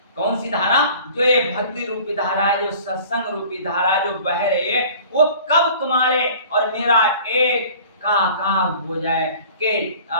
कौन सी धारा? जो ये भक्ति रूपी धारा है, जो सत्संग रूपी धारा है, जो बह रही है, वो कब तुम्हारे और मेरा एक का हो जाए कि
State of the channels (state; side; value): inverted; both; correlation -0.46